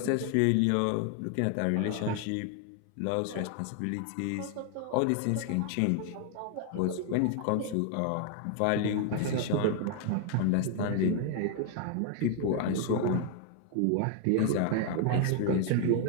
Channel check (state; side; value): different; both; correlation 0.00